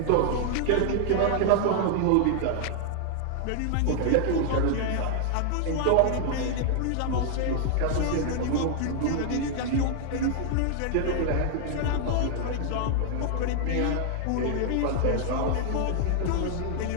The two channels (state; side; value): different; both; correlation 0.00